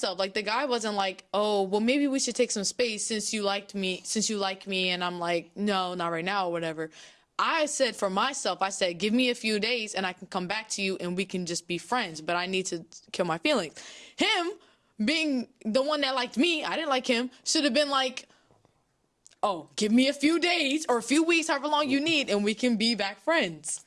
Like the guy wasn't like, oh, well maybe we should take some space since you like me, and I'm like, no, not right now or whatever. I said for myself, I said, give me a few days and I can come back to you and we can just be friends. But I need to kill my feelings. Him being the one that liked me, I didn't like him, should have been like, oh, give me a few days or a few weeks, however long you need, and we can be back friends.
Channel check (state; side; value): identical; both; correlation 1.00